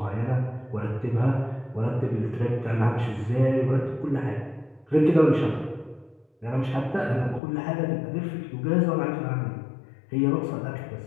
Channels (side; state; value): right; drops out; at 7.4 s